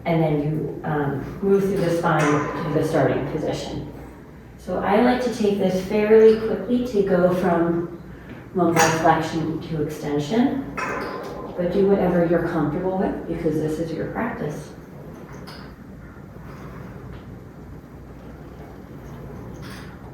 And then you move through the spine to the starting position. So I like to take this fairly quickly to go from lumbar flexion to extension, but do whatever you're comfortable with because this is your practice.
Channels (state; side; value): identical; both; correlation 1.00